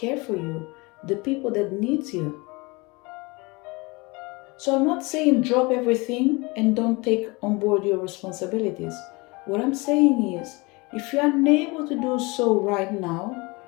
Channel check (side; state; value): right; quieter; 25.7 dB